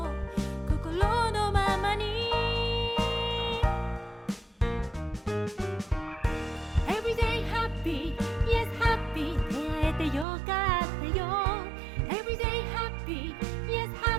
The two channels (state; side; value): drops out; left; at 10.2 s